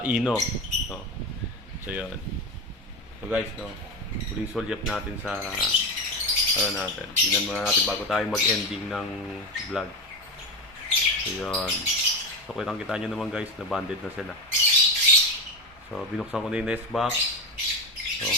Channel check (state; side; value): normal; both; correlation 0.18